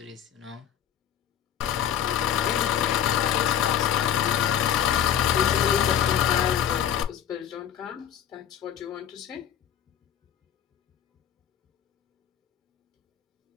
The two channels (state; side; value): quieter; right; 9.8 dB